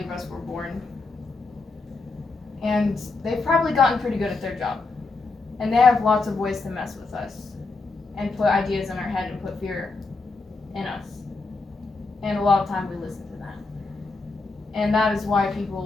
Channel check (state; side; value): quieter; right; 3.8 dB